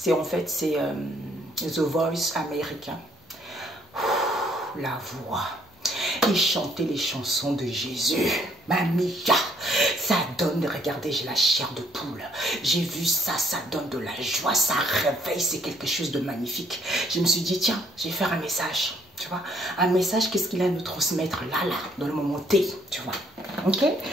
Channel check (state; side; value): normal; both; correlation 0.66